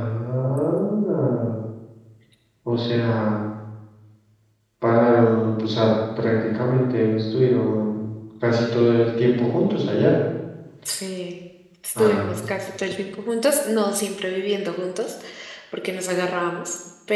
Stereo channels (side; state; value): both; identical; correlation 1.00